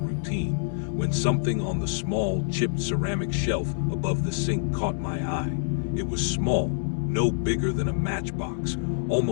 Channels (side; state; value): right; silent; digital silence